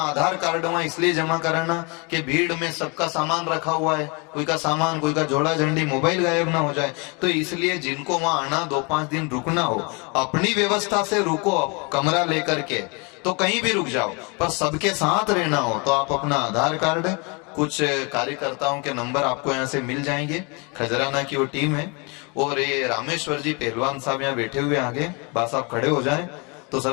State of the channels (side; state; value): right; quieter; 31.0 dB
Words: कार्ड वहां इसलिए जमा कराना कि भीड़ में सबका सामान रखा हुआ है, कोई का सामान, कोई का झोला झंडी, मोबाइल गायब ना हो जाए। तो इसलिए जिनको वहां आना 2-5 दिन रुकना हो, अपनी व्यवस्था से रुको, कमरा लेकर के, तो कहीं भी रुक जाओ, पर सबके साथ रहना हो तो आप अपना आधार कार्ड, कुछ कार्यकर्ताओं के नंबर आपको यहाँ से मिल जाएंगे। खजराना की वो टीम है, और ये रामेश्वर जी पहलवान साहब यहाँ बैठे हुए आगे, बस आप खड़े हो जाएं तो